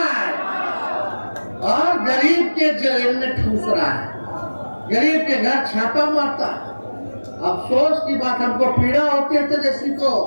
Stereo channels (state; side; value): inverted; both; correlation -1.00